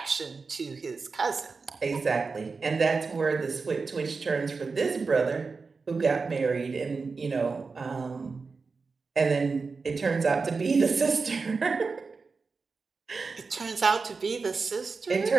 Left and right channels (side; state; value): left; quieter; 4.5 dB